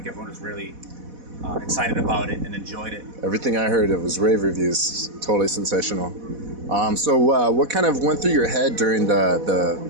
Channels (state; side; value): late; left; 4.1 ms